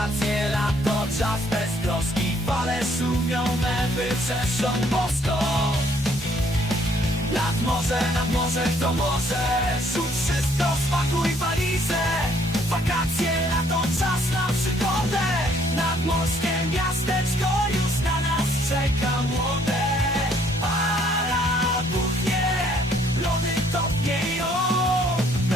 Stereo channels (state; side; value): normal; both; correlation 0.64